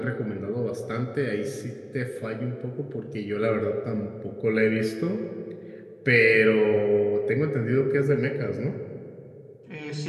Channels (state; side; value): identical; both; correlation 1.00